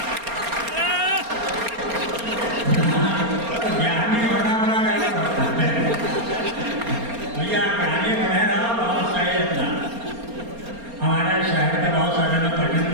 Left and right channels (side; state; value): left; late; 4.3 ms